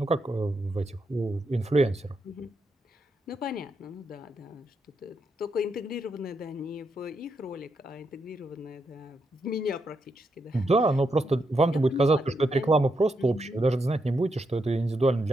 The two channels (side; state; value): both; normal; correlation 0.82